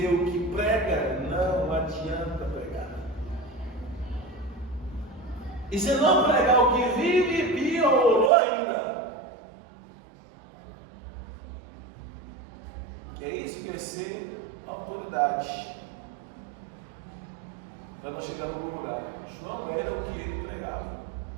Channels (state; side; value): drops out; left; at 8.3 s